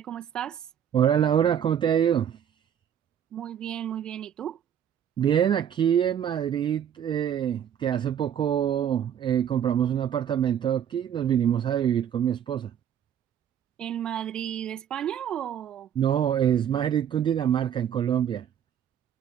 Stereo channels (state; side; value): quieter; left; 9.3 dB